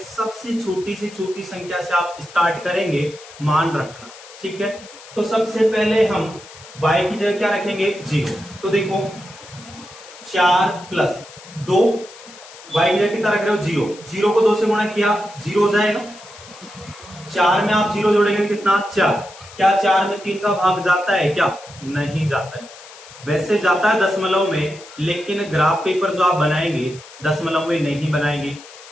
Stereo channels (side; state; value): left; noise; hiss, 19 dB below the sound